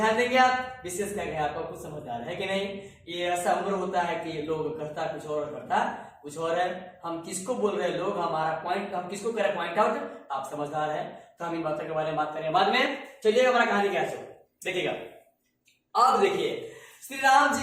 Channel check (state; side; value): identical; both; correlation 1.00